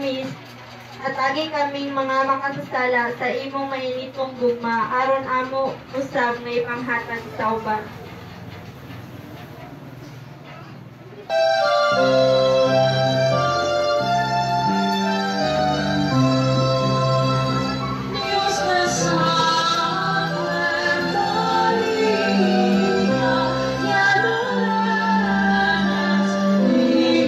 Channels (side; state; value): both; identical; correlation 1.00